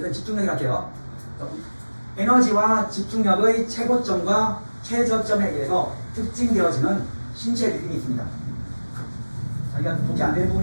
집중력이라 할게요. 에너지와 집중력의 최고점과 최저점에 의해서 특징되어지는 신체 리듬이 있습니다. 자기가 보기 안 되는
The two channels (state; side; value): inverted; both; correlation -1.00